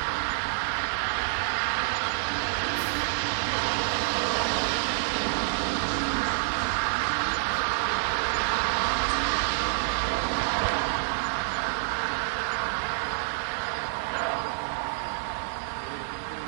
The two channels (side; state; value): left; silent; 59 dB below the other